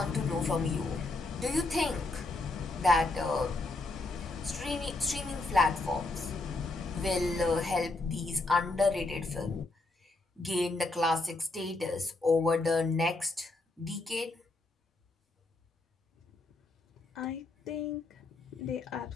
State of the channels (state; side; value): quieter; right; 3.1 dB